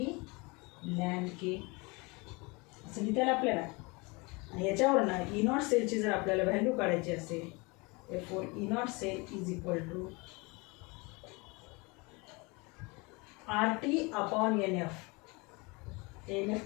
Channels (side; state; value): right; quieter; 27.2 dB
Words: ln K. असं लिहिता येईल आपल्याला. आणि याच्यावरनं E naught सेलची जर आपल्याला व्हॅल्यू काढायची असेल therefore E naught cell is equal to RT upon NF. NF